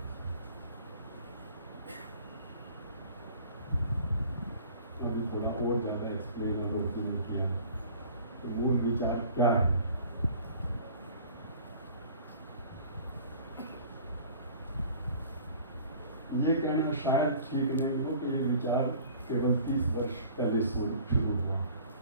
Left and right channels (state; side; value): inverted; both; correlation -0.48